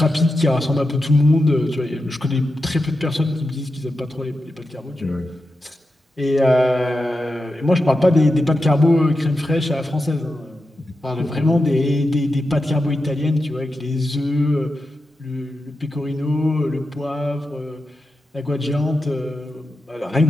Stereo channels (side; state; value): both; normal; correlation 0.90